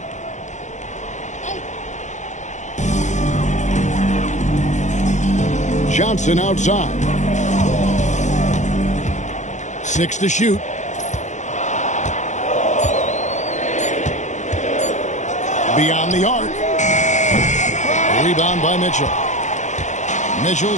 Johnson outside. 6 to shoot. Beyond the arc. Rebound by Mitchell.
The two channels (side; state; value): right; late; 0.35 ms